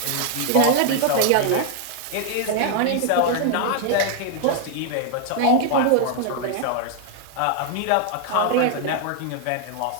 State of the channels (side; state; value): both; different; correlation 0.00